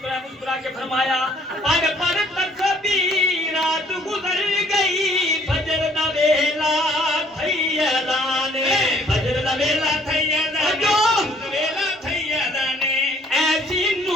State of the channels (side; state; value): both; normal; correlation 0.61